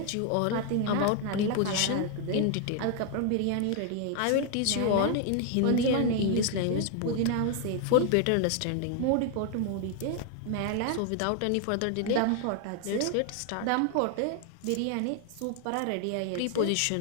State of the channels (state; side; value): different; both; correlation 0.00